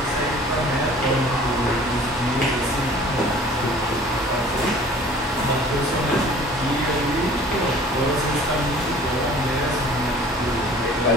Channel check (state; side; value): normal; both; correlation 0.49